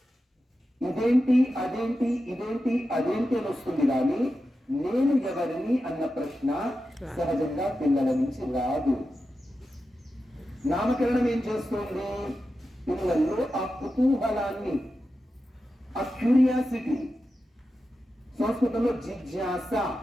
ఇదేంటి అదేంటి, ఇదేంటి అదేంటి అని వస్తుంది. కానీ నేను ఎవరిని అన్న ప్రశ్న సహజంగా పిల్లల నుంచి రాదు. నామకరణం ఏం చేస్తుంది? పిల్లల్లో ఆ కుతూహలాన్ని, ఆ క్యూరియాసిటీ, సంస్కృతంలో జిజ్ఞాస,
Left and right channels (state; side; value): normal; both; correlation 0.91